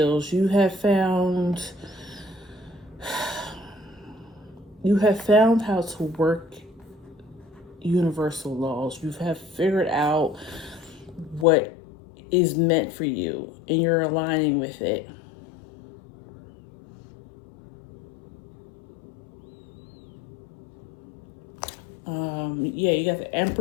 You have found how to work universal laws. You have figured out what is meant for you, and you're aligning with it. Yeah, you got the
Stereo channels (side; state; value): right; drops out; at 11.5 s